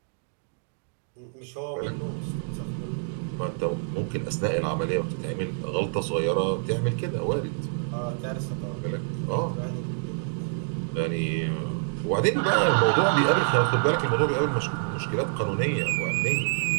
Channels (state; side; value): silent; left; digital silence